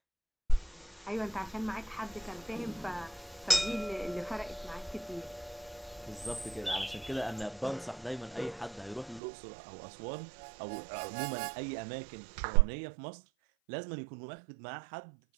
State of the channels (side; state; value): left; drops out; at 9.2 s